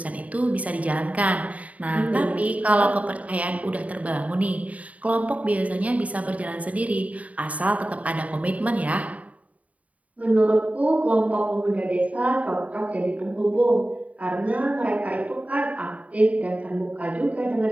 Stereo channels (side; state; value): left; late; 0.069 ms